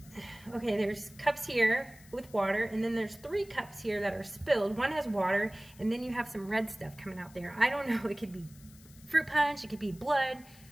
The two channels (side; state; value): left; noise; hiss, 23 dB below the sound